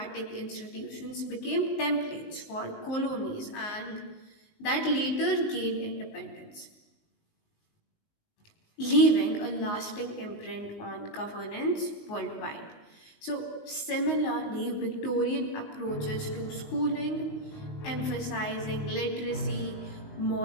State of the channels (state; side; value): late; right; 20 ms